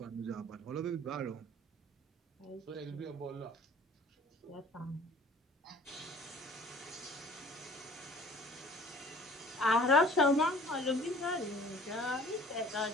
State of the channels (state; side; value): normal; both; correlation 0.50